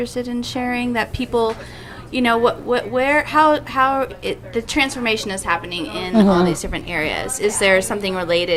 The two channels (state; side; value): identical; both; correlation 1.00